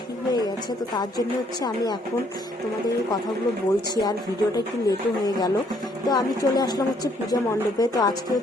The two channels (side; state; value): both; normal; correlation 0.67